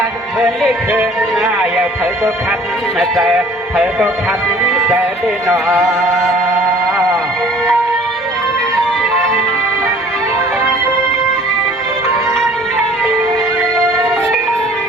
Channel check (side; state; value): both; normal; correlation 0.52